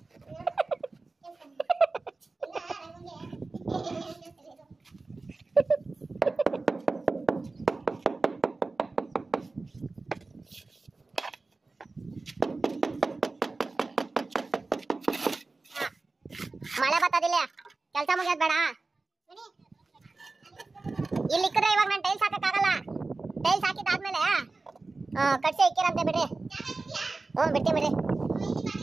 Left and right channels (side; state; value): left; quieter; 3.6 dB